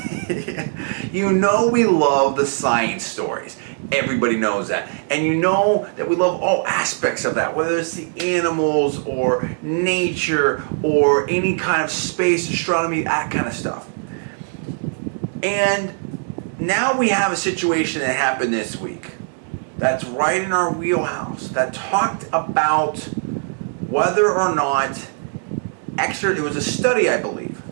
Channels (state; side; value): silent; left; 65 dB below the other